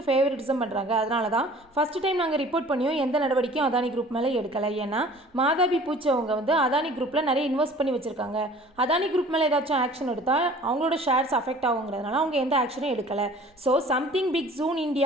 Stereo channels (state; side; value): normal; both; correlation 0.48